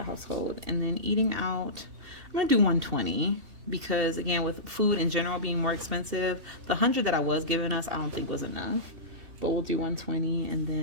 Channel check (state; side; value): late; left; 2.7 ms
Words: household. And then eating out, I'm gonna do $120. Because again, with food in general being more expensive, the $100 that I was giving us, I don't think was enough. But we'll do $120, and